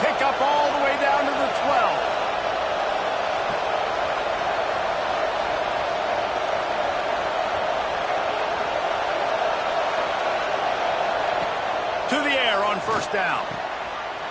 pickup all the way down to the 12. To the air on first down.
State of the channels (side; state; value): both; identical; correlation 1.00